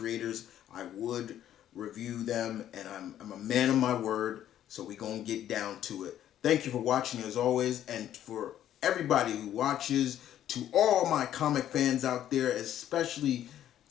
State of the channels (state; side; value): quieter; right; 11.4 dB